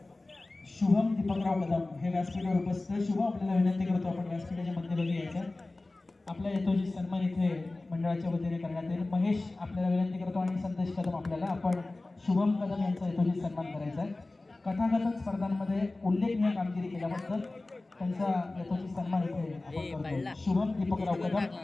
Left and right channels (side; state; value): right; quieter; 3.0 dB